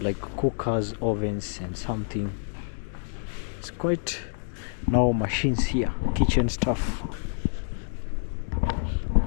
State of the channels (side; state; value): right; silent; digital silence